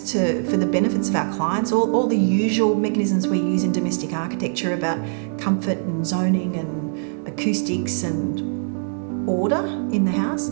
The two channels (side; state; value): left; silent; digital silence